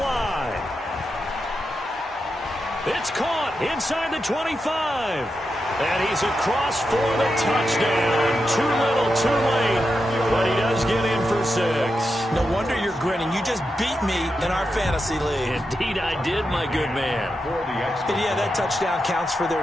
It's caught inside the 25. And he's across for the touchdown. Too little, too late. But he does get in for 6. No wonder you're grinning. You just beat me in our fantasy league. Indeed I did, my good man. And yeah, that touchdown counts for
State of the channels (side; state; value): both; normal; correlation 0.87